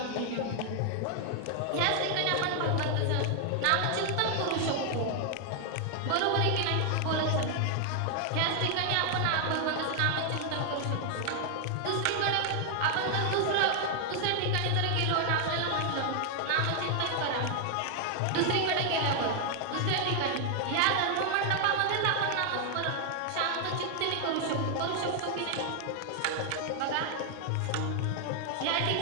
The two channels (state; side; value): different; both; correlation 0.00